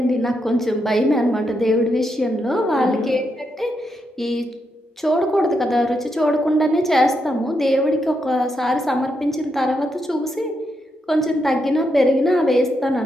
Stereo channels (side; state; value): both; normal; correlation 0.82